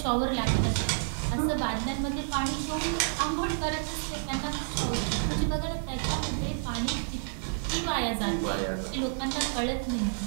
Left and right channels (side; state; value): left; silent; digital silence